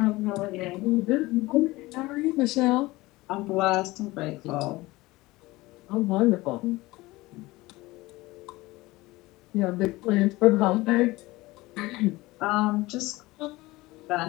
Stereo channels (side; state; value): right; quieter; 20.1 dB